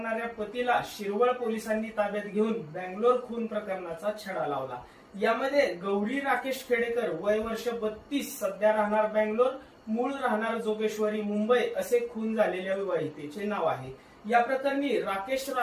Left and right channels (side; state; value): both; identical; correlation 1.00